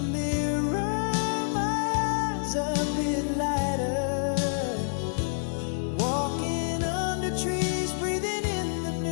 mirror my eyes a bit lighter. Walking under trees, breathing in the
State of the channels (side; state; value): right; silent; 59 dB below the other